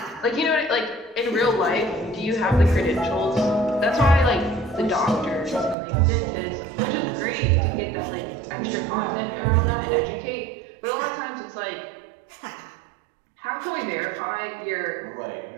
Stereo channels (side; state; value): left; drops out; at 5.8 s